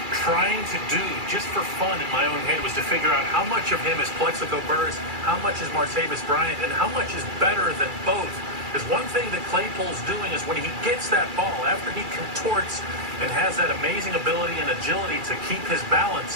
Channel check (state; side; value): late; left; 2.3 ms